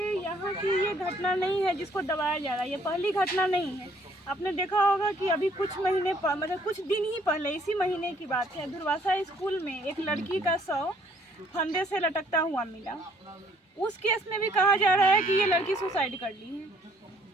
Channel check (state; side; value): normal; both; correlation 0.62